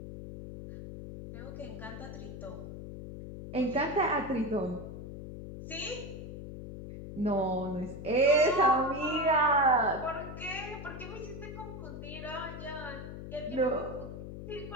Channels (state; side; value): noise; left; hum, 10 dB below the sound